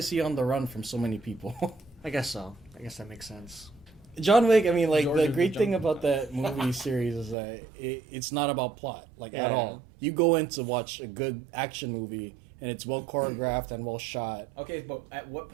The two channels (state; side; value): drops out; left; at 7.4 s